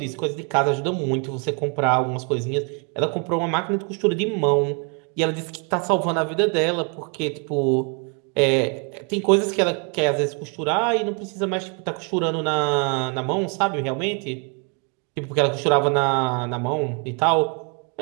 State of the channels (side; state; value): left; quieter; 35.8 dB